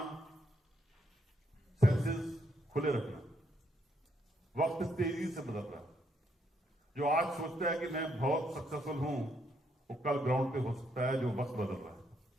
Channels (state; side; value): normal; both; correlation 0.74